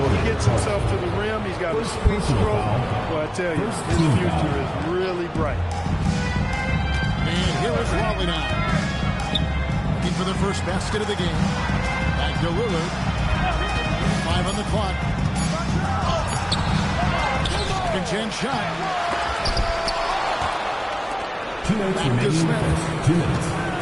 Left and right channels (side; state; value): both; identical; correlation 1.00